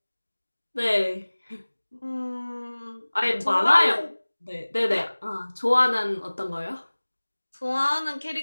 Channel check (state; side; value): inverted; both; correlation -1.00